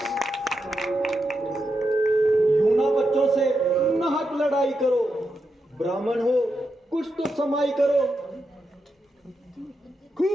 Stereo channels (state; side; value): normal; both; correlation 0.86